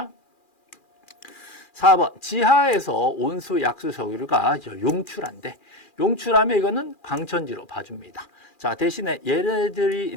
4번. 지하에서 온수 약수 석유가 용출한데 용출하면 이거는 광천지로 봐줍니다. 자, 대신에 얘네들이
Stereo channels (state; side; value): late; right; 2.4 ms